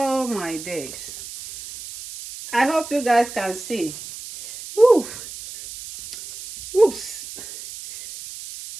my days. I hope you guys can see. Woo. Whoops.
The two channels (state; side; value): noise; right; hiss, 12 dB below the sound